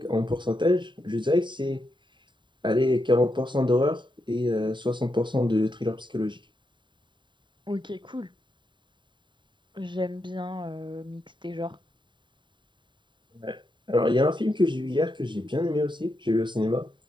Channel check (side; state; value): left; late; 0.23 ms